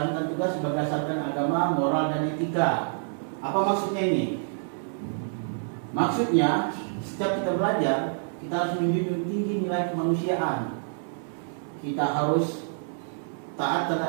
tugas berdasarkan agama, moral, dan etika. Apa maksudnya ini? Maksudnya, setiap kita belajar, kita harus menjunjung tinggi nilai kemanusiaan. Kita harus taat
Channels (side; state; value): left; silent; digital silence